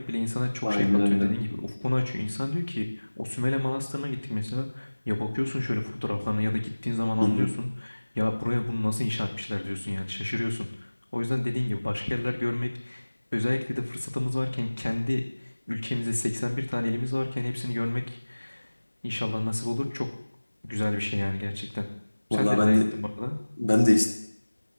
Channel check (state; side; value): inverted; both; correlation -1.00